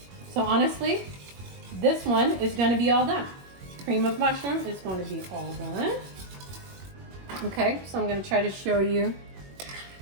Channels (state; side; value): late; left; 21 ms